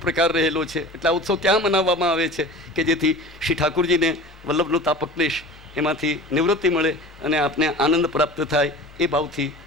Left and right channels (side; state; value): both; normal; correlation 0.38